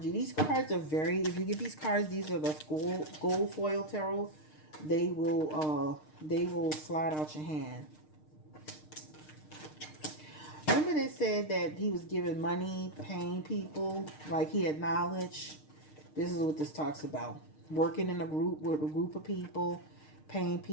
These cards are very. If you get these cards, these are the gold foil tarot. They will slide out your hand. Remember they said that he was giving money, paying people, like he had knowledge. This is what this talks about. Working in a group with a group of people, paying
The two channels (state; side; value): late; right; 6.5 ms